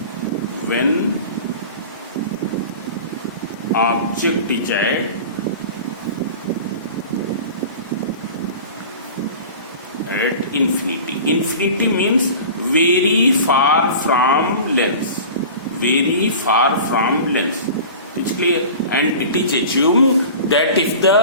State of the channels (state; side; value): inverted; both; correlation -0.37